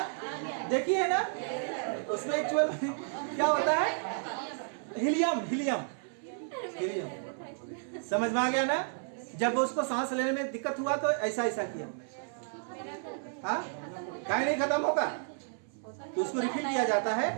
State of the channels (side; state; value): left; silent; 56 dB below the other